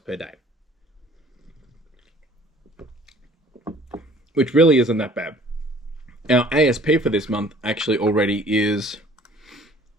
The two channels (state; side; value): normal; both; correlation 0.53